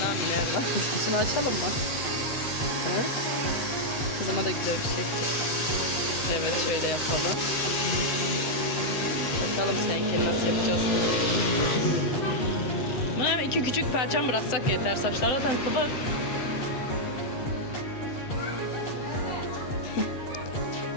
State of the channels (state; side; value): late; right; 7.7 ms